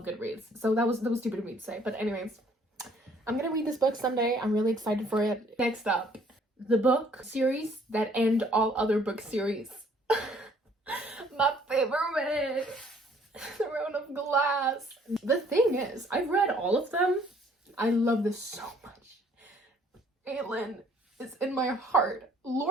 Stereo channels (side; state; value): both; normal; correlation 0.61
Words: Goodreads, so that was stupid of me to say. But anyways, I'm gonna read this book someday. I'm really excited for it. Next up, the book series that end all other book series. My favorite, Throne of Glass. The thing is, I've read all of them. I love this so much. Aelin is in my heart.